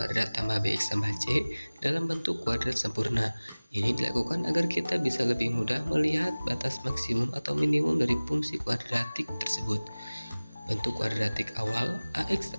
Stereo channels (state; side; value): inverted; both; correlation -0.99